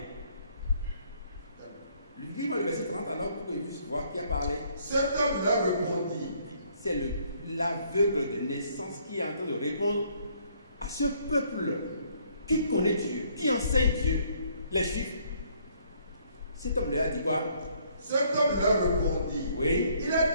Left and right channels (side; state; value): both; inverted; correlation -0.65